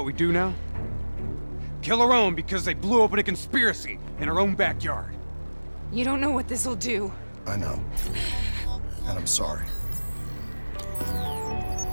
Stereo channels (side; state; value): both; inverted; correlation -1.00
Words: we do now? Kill our own because they blew open a conspiracy in our own backyard. You don't know what this'll do. I know. And I'm sorry.